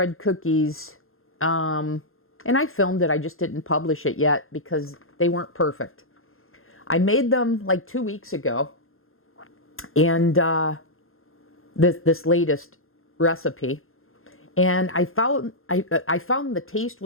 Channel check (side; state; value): right; late; 0.61 ms